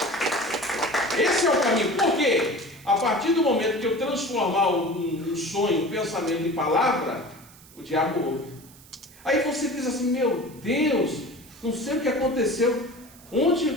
Esse é o caminho. Por quê? A partir do momento que eu transformar um sonho, um pensamento em palavra, o diabo ouve. Aí você diz assim, meu Deus, não sei o que aconteceu. Ontem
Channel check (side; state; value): right; noise; hiss, 23 dB below the sound